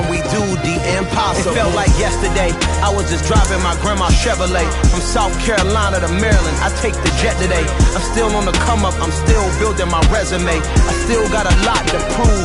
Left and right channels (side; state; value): both; identical; correlation 1.00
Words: we do the impossible. It felt like yesterday. I was just driving my grandma's Chevrolet from South Carolina to Maryland. I take the jet today. I'm still on the come up. I'm still building my resume. I still got a lot to